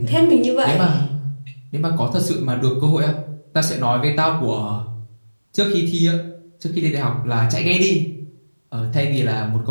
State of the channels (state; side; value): inverted; both; correlation -1.00